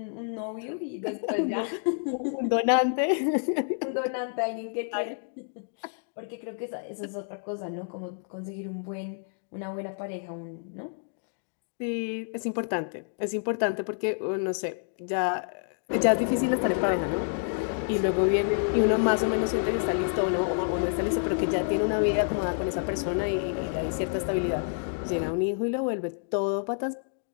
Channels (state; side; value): silent; right; digital silence